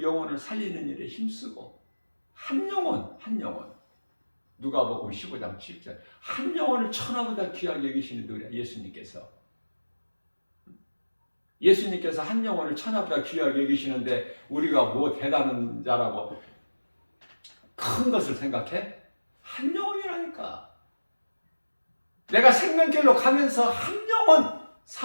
영혼을 살리는 일에 힘쓰고, 한 영혼 누가복음 15장 7절 한 영혼을 천하보다 귀하게 여기시는 누구야? 예수님께서 한 영혼을 천하보다 귀하게 여기시는데 우리가 뭐 대단한 자라고 큰 것을 생각해? 한 영혼이라니까. 내가 생명길로 가면서 한 영혼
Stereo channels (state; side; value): inverted; both; correlation -1.00